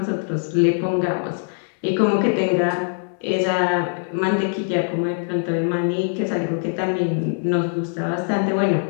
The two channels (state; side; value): silent; right; 64 dB below the other